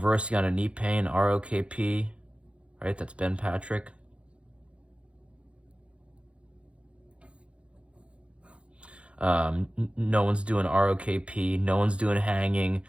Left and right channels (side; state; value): left; late; 0.060 ms